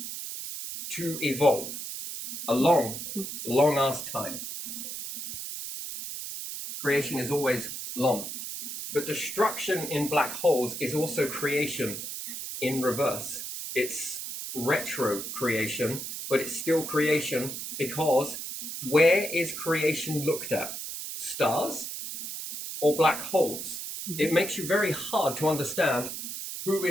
to evolve. A long-ass time. Creation is always long. But destruction in black holes is also creation in reverse. It's retro creation, but it's still creation, because where is creation looked at? Stars or black holes? It makes you very hard to understand who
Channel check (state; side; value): noise; right; hiss, 7 dB below the sound